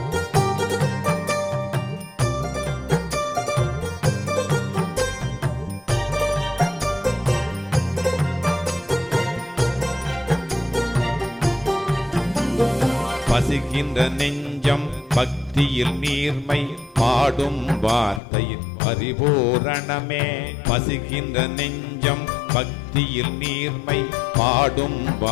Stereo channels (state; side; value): drops out; right; at 18.2 s